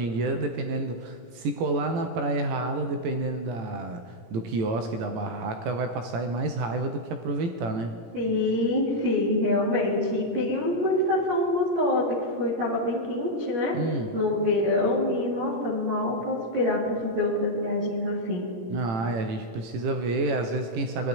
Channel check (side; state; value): left; late; 18 ms